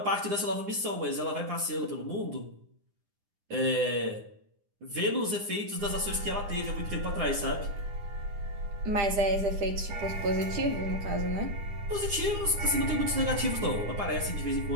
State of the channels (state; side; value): late; left; 9.9 ms